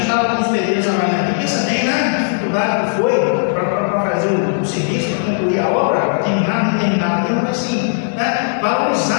estava com os pedreiros amanhã aqui, pensa bem, né? A dificuldade que foi para fazer o serviço, para concluir a obra, terminar, não terminar, mas assim, né?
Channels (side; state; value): right; silent; 68 dB below the other